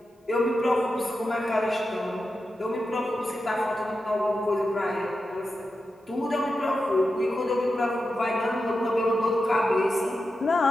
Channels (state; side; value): normal; both; correlation 0.90